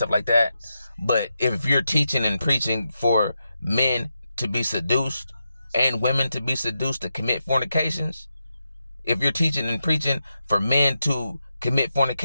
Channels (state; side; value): inverted; both; correlation -0.86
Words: like that, but if you're teaching and preaching for men to be seduced and women to be seduced to commit fornications, if you're teaching and preaching for men to commit